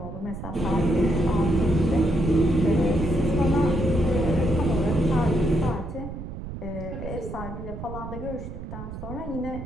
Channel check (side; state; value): right; noise; rumble, 10 dB below the sound